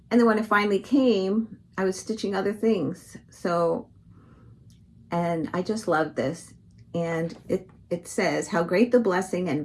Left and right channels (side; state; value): both; identical; correlation 1.00